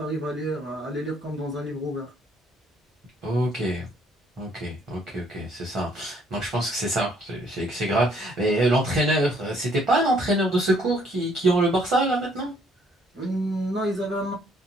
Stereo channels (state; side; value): normal; both; correlation 0.65